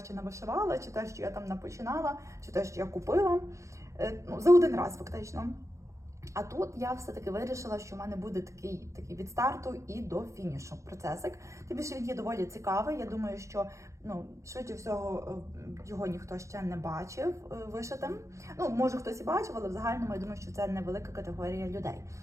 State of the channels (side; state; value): left; late; 0.15 ms